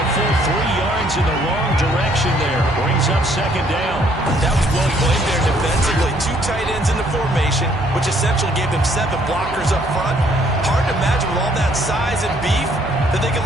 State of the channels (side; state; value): both; normal; correlation 0.65